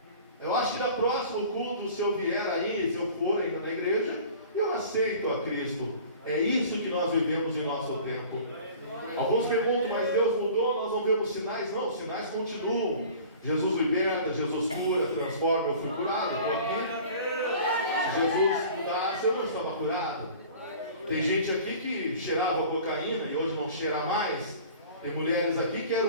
Eu acho que na próximo culto, se eu vier aí, se eu for ainda na igreja, eu aceito a Cristo. É isso que nós vivemos em nosso tempo. Alguns perguntam, mas Deus mudou, nós não vemos sinais? Não, os sinais continuam. Jesus liberta, Jesus cura, transforma. Eu fui curado, estou aqui. Se Jesus mudasse Você não estava curado? Tem gente aqui que cheirava cocaína e hoje não cheira mais. Tem mulheres aqui que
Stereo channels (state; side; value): inverted; both; correlation -0.44